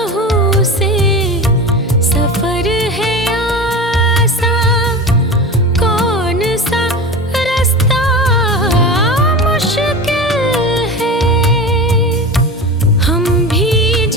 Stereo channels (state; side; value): normal; both; correlation 0.29